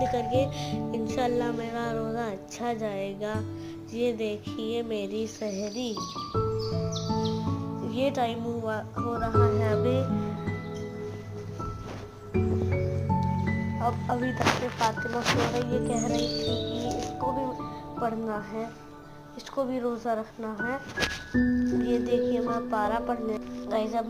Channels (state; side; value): identical; both; correlation 1.00